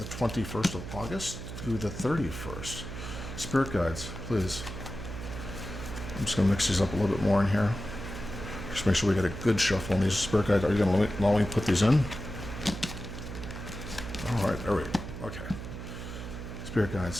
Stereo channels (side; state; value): right; noise; hum, 9 dB below the sound